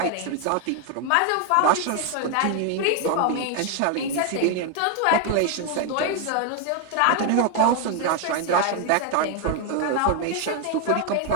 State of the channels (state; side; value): different; both; correlation 0.01